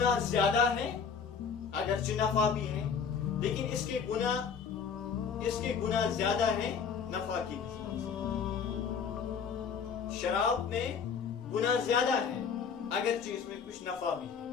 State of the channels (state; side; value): quieter; right; 6.4 dB